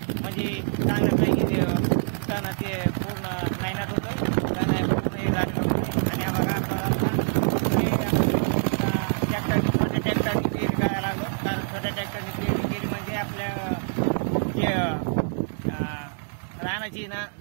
म्हणजे चांगल्यापैकी तणाचे पूर्ण नायनाट होतोय, तण पूर्ण झालेलं होतं. आणि हा बघा ट्रॅक्टरनी पेरणी करायला लागलो, कारण छोट्या ट्रॅक्टरनी पेरणी केली म्हणजे आपल्या जे रानाची ना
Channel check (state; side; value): silent; left; digital silence